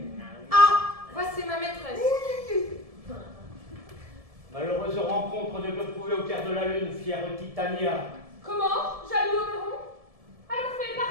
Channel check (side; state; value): left; late; 1.7 ms